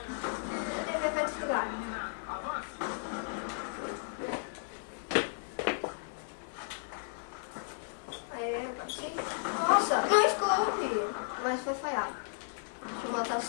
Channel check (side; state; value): right; silent; 55 dB below the other